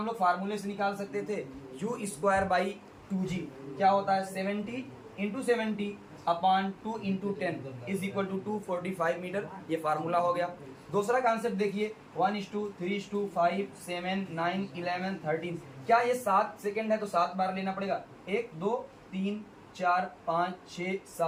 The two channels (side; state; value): both; identical; correlation 1.00